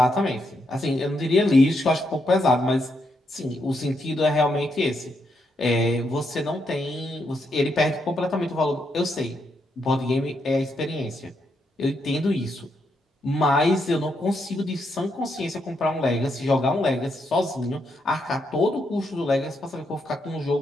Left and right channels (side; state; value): both; normal; correlation 0.79